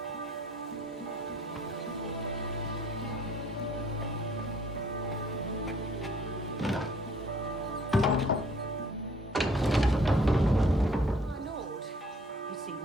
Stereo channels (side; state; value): both; normal; correlation 0.58